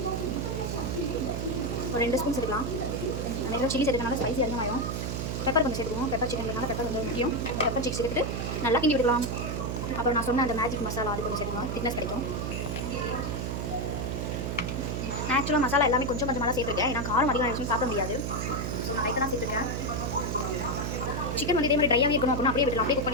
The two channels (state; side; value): noise; right; hum, 2 dB below the sound